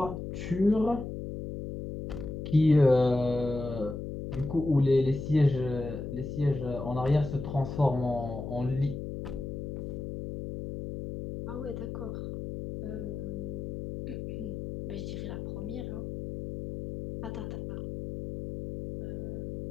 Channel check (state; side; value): noise; left; hum, 6 dB below the sound